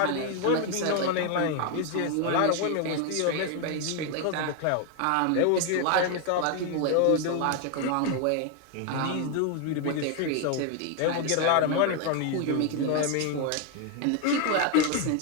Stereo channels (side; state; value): both; different; correlation 0.01